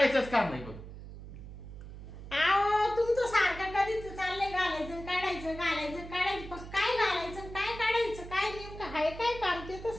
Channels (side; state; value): right; noise; hum, 13 dB below the sound